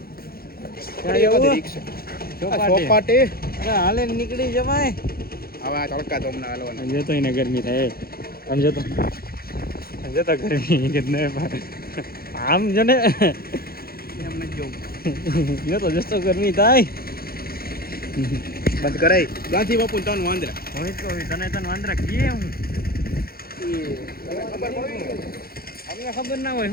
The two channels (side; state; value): right; late; 0.44 ms